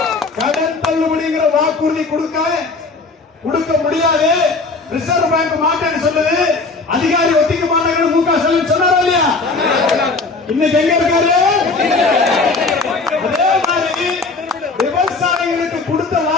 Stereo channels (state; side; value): quieter; right; 3.8 dB